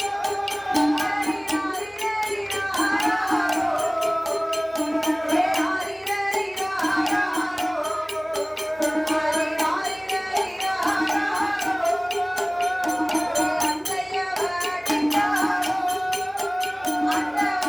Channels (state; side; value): identical; both; correlation 1.00